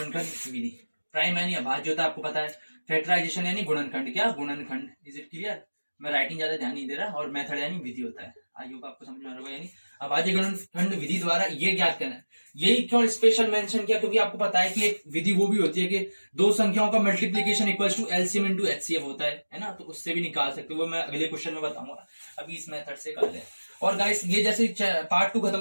विधि, प्राइम यानी अभाज्य होता है आपको पता है, फैक्टराइजेशन यानी गुणनखंड, क्या गुणनखंड। Is it clear? मैं राइटिंग ज्यादा ध्यान नहीं दे रहा। और मेथड यानी विधि होता है, आई होप आपको समझ में आ रहा होगा। यानी अभाज्य गुणनखंड विधि द्वारा ये ज्ञात करना है। यही क्यों स्पेशल मेंशन किया, क्योंकि आपको पता है कि एक विधि वो भी होती है कि दो संख्याओं का multiplication equals to LCM into HCF होता है ना। तो उससे भी निकाल सकते हो, वो मैं अगले क्वेश्चन में बताऊंगा। अभी इस मेथड से कर ले। और गाइस ये जैसे पार्ट 2 खत्म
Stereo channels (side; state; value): both; inverted; correlation -1.00